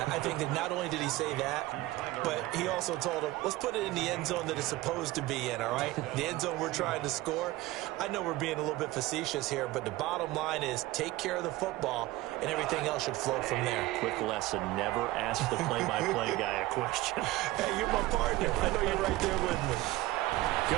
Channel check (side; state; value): left; quieter; 18.1 dB